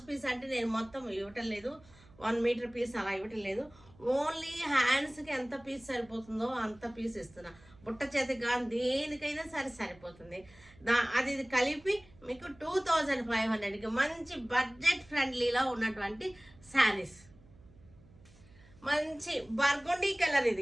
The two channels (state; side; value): noise; right; hum, 25 dB below the sound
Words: పీస్ అంటే నేను మొత్తం ఇవ్వటం లేదు, 1 మీటర్ పీస్ అలా ఇవ్వటం లేదు. ఓన్లీ హ్యాండ్స్కి ఎంత పీస్ సరిపోతుందో అంత పీస్ ఇస్తున్నా. బుట్ట చేతికి కానీ దేనికైనా సరిపోతుంది. అది కలిపి మీకు 2500కి మంచి బడ్జెట్ ఫ్రెండ్లీలో ఉన్నటువంటి శారీస్. మంచి బర్గుండీ కలర్.